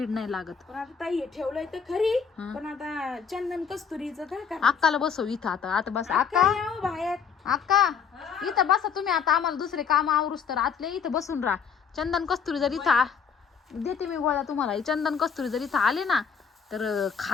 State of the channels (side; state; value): right; quieter; 6.8 dB